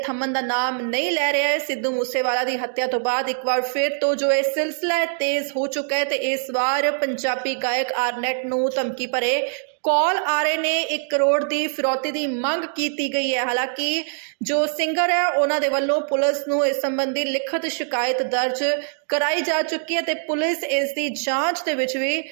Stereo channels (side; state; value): left; silent; digital silence